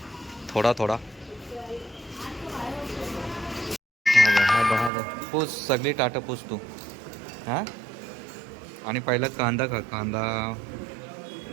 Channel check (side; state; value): left; drops out; at 4.9 s